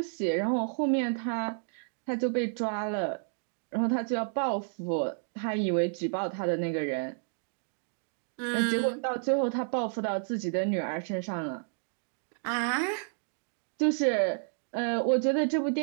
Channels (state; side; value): silent; left; digital silence